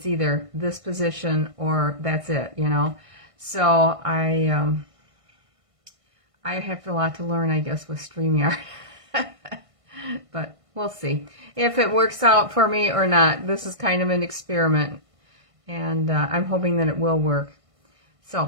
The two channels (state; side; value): late; left; 1.5 ms